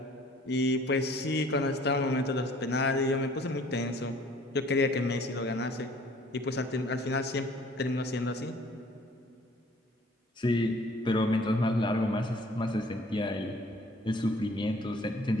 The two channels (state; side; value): normal; both; correlation 0.55